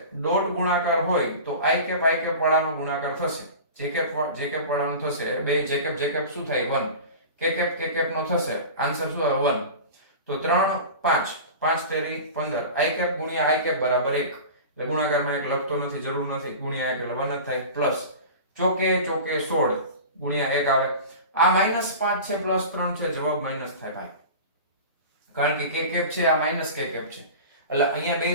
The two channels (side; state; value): both; inverted; correlation -0.34